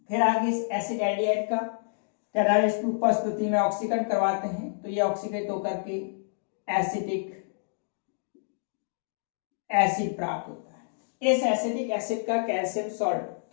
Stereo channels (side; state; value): right; silent; digital silence